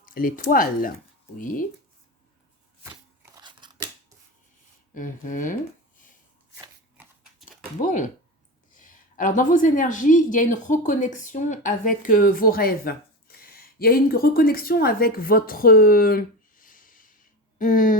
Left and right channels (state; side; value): normal; both; correlation 0.24